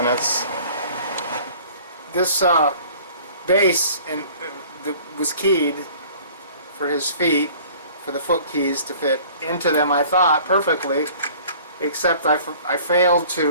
This base was keyed for his feet, for the foot keys to fit into them, I thought, perfectly, except I failed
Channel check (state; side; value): inverted; both; correlation -0.49